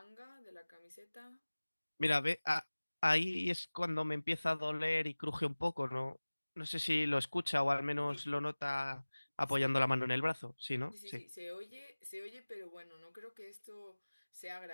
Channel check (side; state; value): both; inverted; correlation -1.00